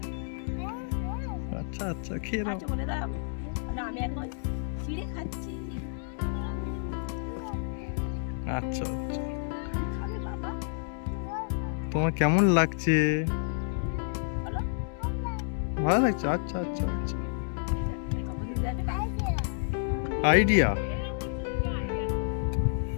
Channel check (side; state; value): right; silent; digital silence